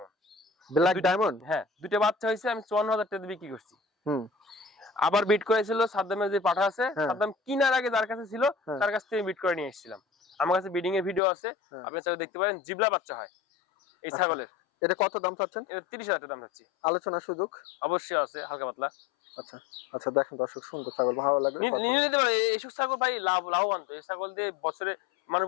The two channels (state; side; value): drops out; right; at 11.2 s